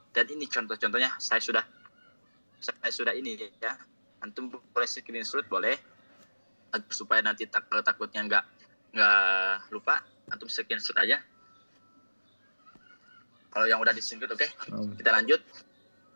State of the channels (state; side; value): inverted; both; correlation -1.00